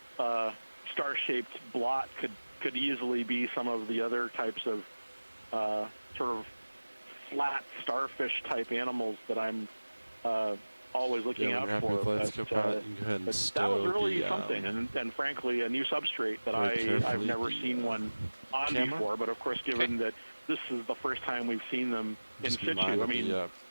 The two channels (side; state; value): both; inverted; correlation -1.00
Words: star-shaped blot could easily be some of the other types of sort of flat starfish type animals that I'm always looking out for. But that was really something, and frankly, a new substrate that I've never seen one on before. But of course, given that this is the first time we've seen them in situ, I mean,